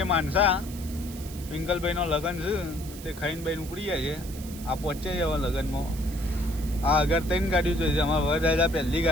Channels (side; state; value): right; noise; hiss, 15 dB below the sound